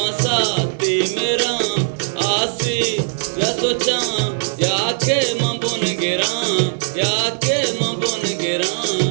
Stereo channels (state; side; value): silent; left; digital silence